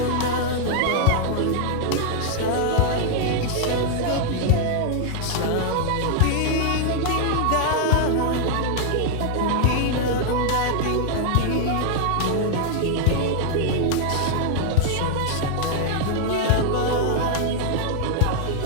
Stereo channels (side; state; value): both; different; correlation 0.00